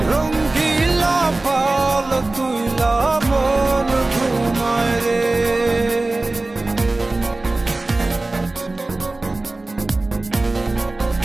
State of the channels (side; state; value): left; quieter; 3.0 dB